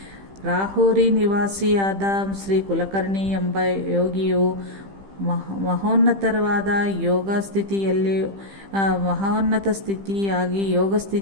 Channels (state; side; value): late; left; 15 ms